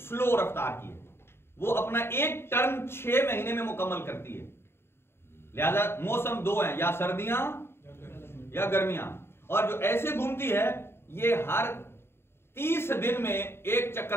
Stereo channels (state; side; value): late; right; 0.12 ms